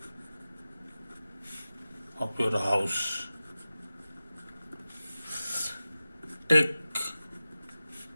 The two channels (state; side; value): inverted; both; correlation -0.95